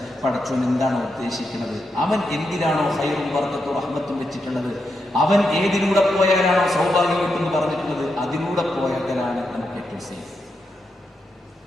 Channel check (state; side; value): normal; both; correlation 0.84